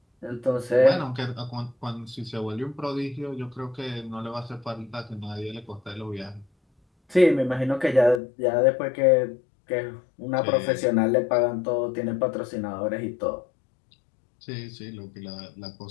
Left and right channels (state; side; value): drops out; right; at 8.2 s